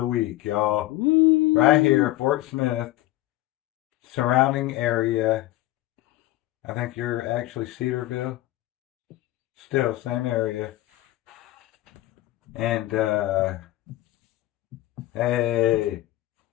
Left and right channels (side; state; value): right; quieter; 16.4 dB